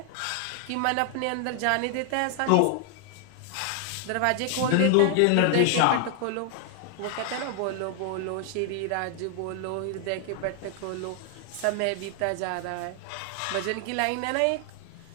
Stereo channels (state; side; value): different; both; correlation 0.00